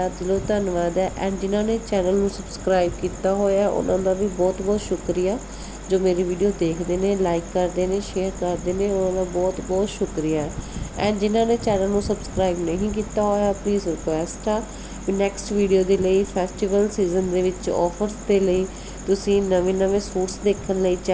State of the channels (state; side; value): identical; both; correlation 1.00